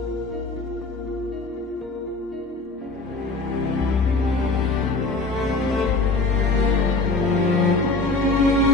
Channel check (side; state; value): right; quieter; 3.4 dB